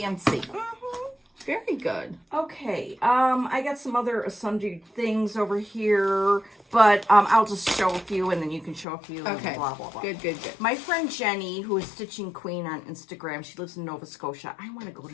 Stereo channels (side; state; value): right; drops out; at 8.8 s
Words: Very good. Okay, I got some other sundry things over here, but I'll just show a few, and then you can show a few. Okay. And blah blah blah. Good. My friend Jenny, who is Stitching Queen on Instagram, she lives in Nova Scotia. I want to go